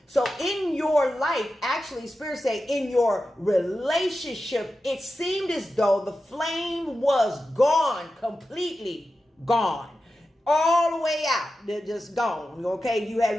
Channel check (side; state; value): both; normal; correlation 0.92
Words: So in your life, actually, Spirit say in your relationship, it seemed as though the flame was gone, completely gone. All the way out. They're just gone. Okay, you